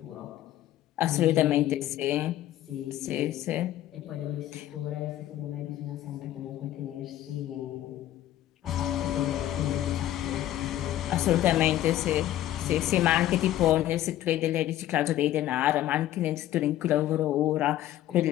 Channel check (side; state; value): right; quieter; 13.4 dB